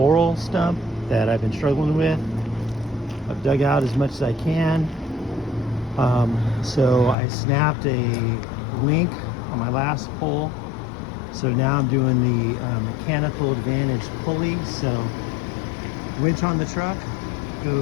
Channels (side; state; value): right; drops out; at 7.2 s